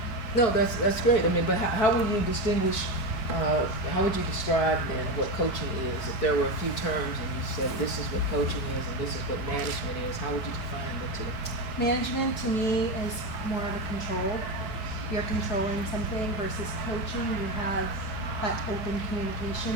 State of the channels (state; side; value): late; right; 4.6 ms